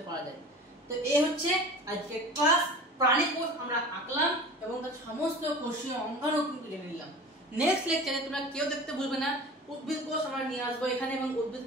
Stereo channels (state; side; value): normal; both; correlation 0.38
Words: পারা যায়। তো এই হচ্ছে আজকে ক্লাস। প্রাণী কোষ আমরা আঁকলাম এবং তার সমস্ত কোষীয় অঙ্গাণু কিন্তু জেনে নিলাম। নেক্সট লেকচারে তোমরা কেউ দেখতে ভুলবে না, উদ্ভিদ কোষ আমরা নিয়ে আসবো এখানে এবং উদ্ভিদ